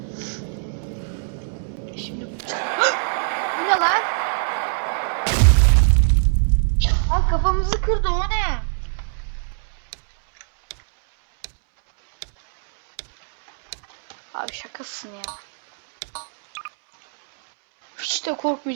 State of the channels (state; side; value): silent; left; 64 dB below the other